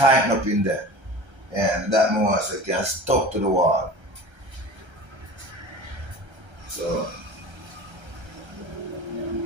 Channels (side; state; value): left; late; 1.3 ms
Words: up in there, and that more so it can stuck to the wall. So.